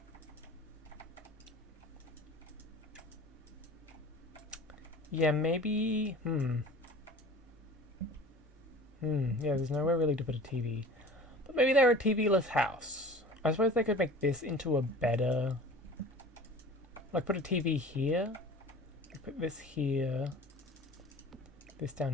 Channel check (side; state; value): both; normal; correlation 0.41